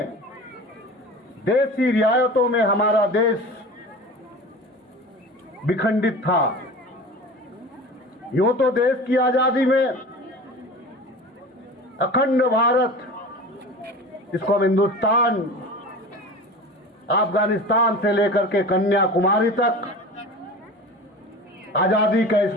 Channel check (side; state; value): both; normal; correlation 0.35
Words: देशी रियायतों में हमारा देश विखंडित था। यूं तो देश की आजादी में अखंड भारत, जिसको हम हिंदुस्तान, अफगानिस्तान से लेकर के कन्याकुमारी तक आजादी का इस